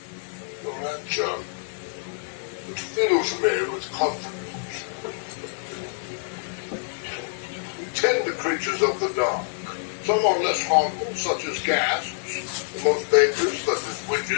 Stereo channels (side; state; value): right; silent; 56 dB below the other